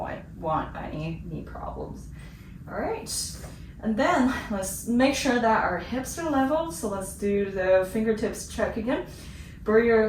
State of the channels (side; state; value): both; identical; correlation 1.00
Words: want any knee problems. All right, and then let's make sure that our hips are level. So let's do the fingertips check again. Bring your